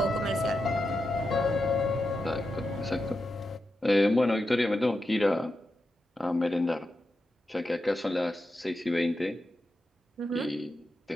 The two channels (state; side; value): normal; both; correlation 0.88